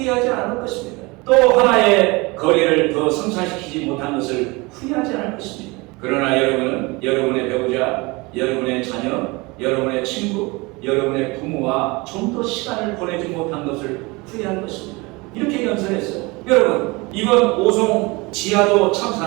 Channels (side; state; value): left; quieter; 25.0 dB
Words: 않을 것입니다. 또 하나의 거리를 더 성사시키지 못한 것을 후회하지 않을 것입니다. 그러나 여러분은 여러분의 배우자, 여러분의 자녀, 여러분의 친구, 여러분의 부모와 좀 더 시간을 보내지 못한 것을 후회할 것입니다. 이렇게 연설했어요. 여러분, 이번 오송 지하도